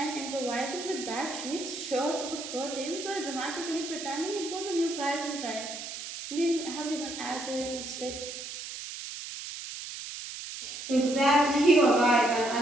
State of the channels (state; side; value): noise; right; hiss, 9 dB below the sound